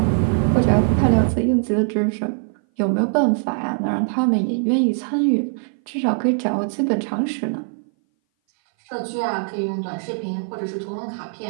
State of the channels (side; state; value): left; silent; 59 dB below the other